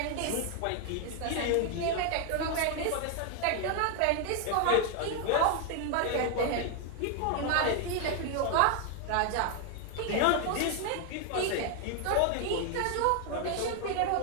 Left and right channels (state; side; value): different; both; correlation 0.00